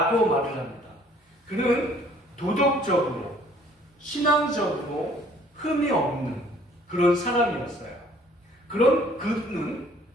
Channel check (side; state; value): both; normal; correlation 0.57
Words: 말을 합니다. 그는 도덕적으로, 신앙적으로 흠이 없는 그런 사람이었어요. 그런 그는